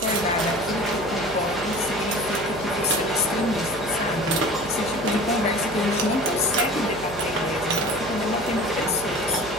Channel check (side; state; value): right; noise; hum, 16 dB below the sound